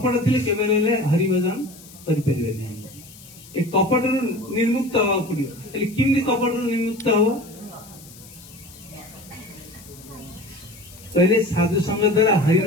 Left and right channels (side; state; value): left; noise; hiss, 20 dB below the sound